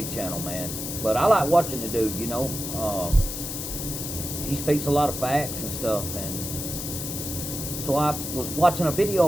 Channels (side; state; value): left; noise; hiss, 5 dB below the sound